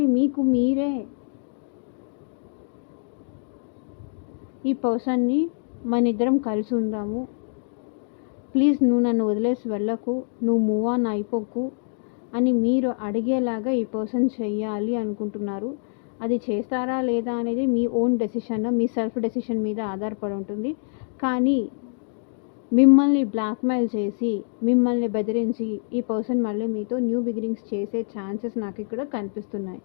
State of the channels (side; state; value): right; silent; digital silence